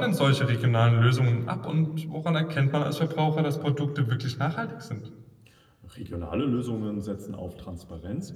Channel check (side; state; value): both; identical; correlation 1.00